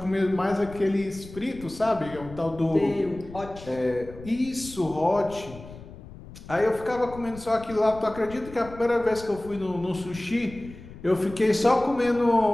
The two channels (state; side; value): noise; left; rumble, 16 dB below the sound